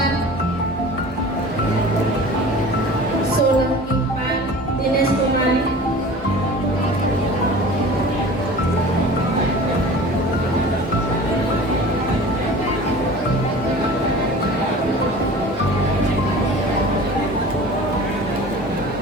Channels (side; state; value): both; normal; correlation 0.40